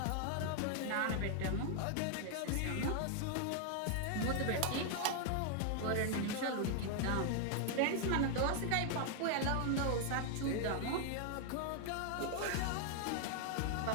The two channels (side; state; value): both; different; correlation 0.00